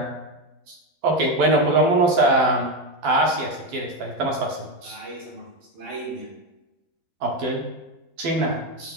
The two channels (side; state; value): left; late; 12 ms